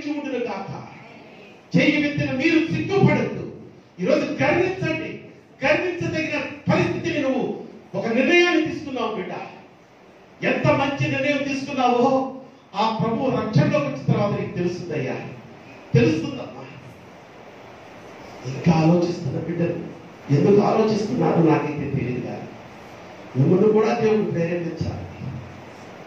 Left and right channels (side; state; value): both; identical; correlation 1.00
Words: ఉండును కాక. చెయ్యి వెత్తిన మీరు సిగ్గుపడద్దు. ఈరోజు గర్వించండి. గర్వించదగిన పరిస్థితిని నువ్వు ఒక నిర్ణయాన్ని తీసుకున్నావు బిడ్డ. ఎంత మంచి నిర్ణయం తీసుకున్నావో ఆ ప్రభు రక్షణలోకి వచ్చిన తర్వాత నీకు తెలుస్తుందయ్యా, తెలుస్తుందమ్మా. ఇంకా ఆలోచిస్తున్న బిడ్డలు ఎందుకు ఆలోచిస్తున్నారో నాకైతే తెలియదు. కానీ మిమ్మల్ని కూడా దేవుడు ప్రేరేపించాలి.